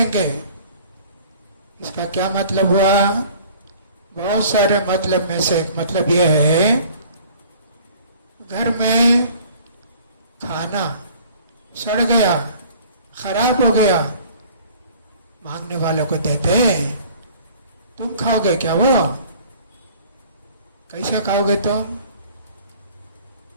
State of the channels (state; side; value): inverted; both; correlation -0.50